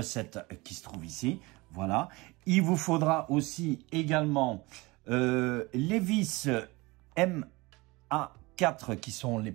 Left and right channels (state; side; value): quieter; left; 23.4 dB